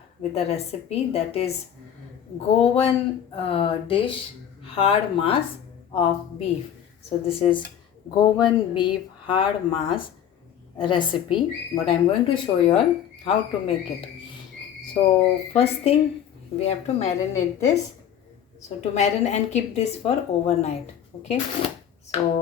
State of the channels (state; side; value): quieter; right; 9.4 dB